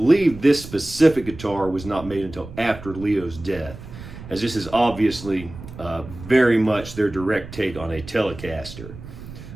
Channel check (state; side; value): noise; right; rumble, 14 dB below the sound